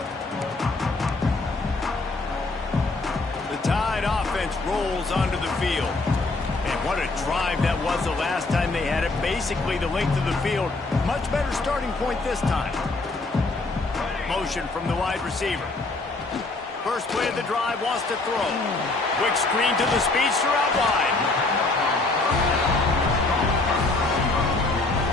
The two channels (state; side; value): quieter; right; 3.3 dB